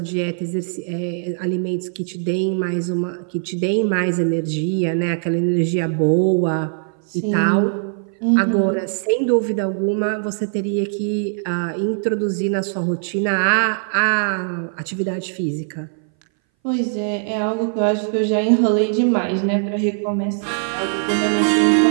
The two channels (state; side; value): silent; left; 60 dB below the other